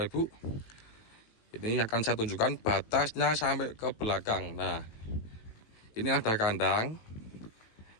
Ibu. Ini akan saya tunjukkan batasnya sampai ke belakang. Nah, ini ada kandang,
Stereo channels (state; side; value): late; right; 18 ms